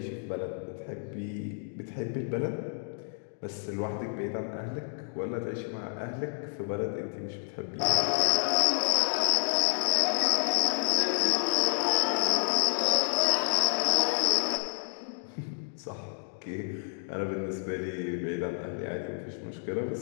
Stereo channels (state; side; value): silent; right; digital silence